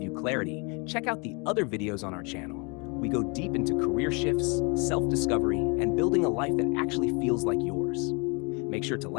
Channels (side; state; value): right; quieter; 32.0 dB